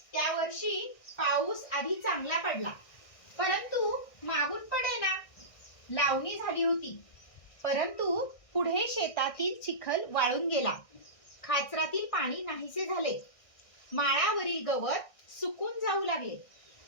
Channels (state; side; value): late; right; 1.6 ms